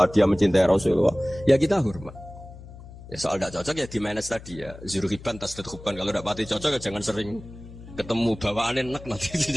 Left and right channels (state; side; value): noise; left; hum, 16 dB below the sound